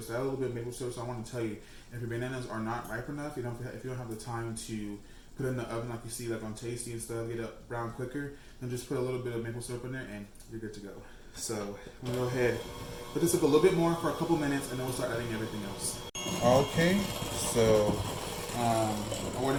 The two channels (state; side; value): identical; both; correlation 1.00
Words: So I add a little bit of maple syrup. So I want to tell you, if your bananas are not ripe enough, if you don't have the time to put it in the oven like you see like on Tasty and stuff, get it brown quicker, then just put a little bit of maple syrup in there and you're good to go. So I'm gonna go ahead, put this up a little bit more for a couple minutes, and then we'll start adding everything else. Okay, so I went